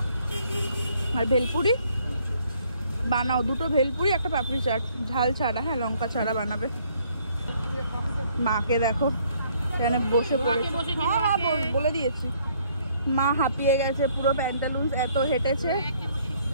আর ভেলপুরি বানাও, দুটো ভেলপুরি একটা পাপড়ি চাট, ঝাল ছাড়া, হ্যাঁ লঙ্কা ছাড়া বানাবে। মাকে দেখো এখানে বসে পড়েছে, হ্যাঁ বলে দিয়েছি। মা হাঁপিয়ে গেছে পুরো, প্যান্টালুন্স এত হেঁটেছে,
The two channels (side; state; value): both; inverted; correlation -0.65